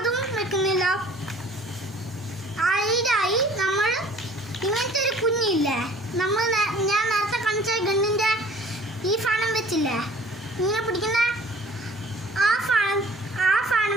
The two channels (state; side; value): normal; both; correlation 0.51